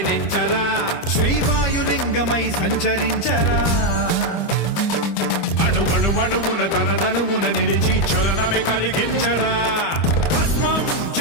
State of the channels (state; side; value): late; right; 25 ms